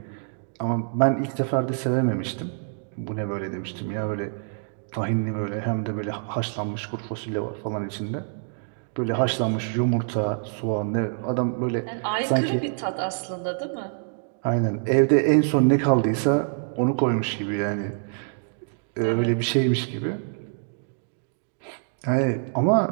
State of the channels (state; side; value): silent; left; digital silence